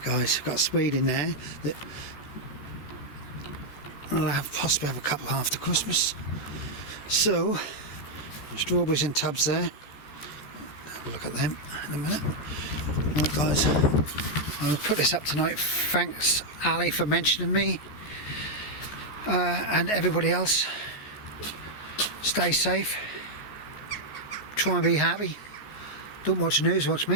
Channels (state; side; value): late; right; 14 ms